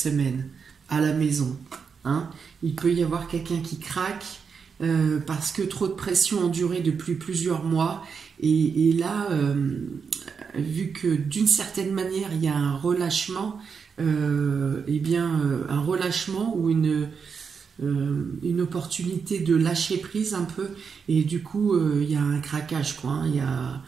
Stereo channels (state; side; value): quieter; left; 6.0 dB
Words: à la maison. Hein. Il peut y avoir quelqu'un qui craque parce que trop de pression endurée depuis plusieurs mois. Et là, vu que d'une certaine manière, il y a un relâchement, un relâchement ou une opportunité de lâcher prise un peu, et du coup il y a un craquage quoi, hein.